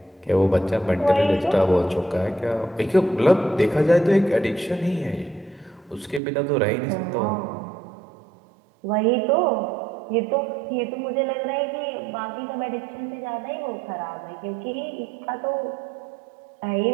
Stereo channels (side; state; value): left; drops out; at 6.2 s